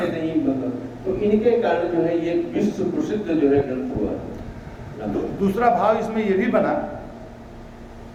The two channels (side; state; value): both; identical; correlation 1.00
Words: नहीं, मतलब तो इनके कारण जो है ये विश्व प्रसिद्ध जो है ग्रंथ हुआ। दूसरा भाव इसमें ये भी बना